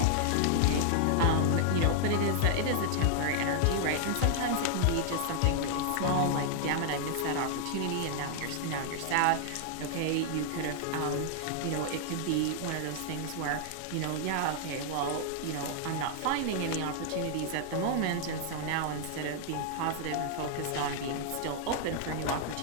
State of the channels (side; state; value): both; different; correlation 0.00